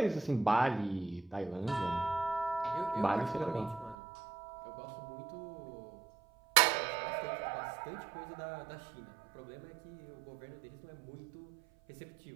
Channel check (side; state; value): left; drops out; at 4.0 s